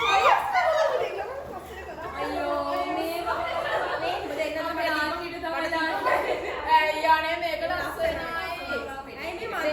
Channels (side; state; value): both; identical; correlation 1.00